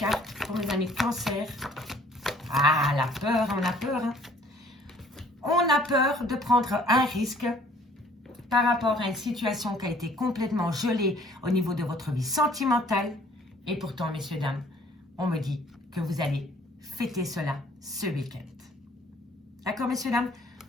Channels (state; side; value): normal; both; correlation 0.57